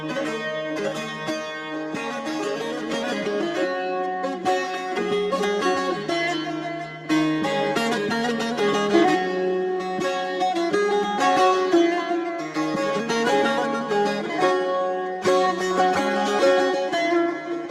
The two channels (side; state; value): both; identical; correlation 1.00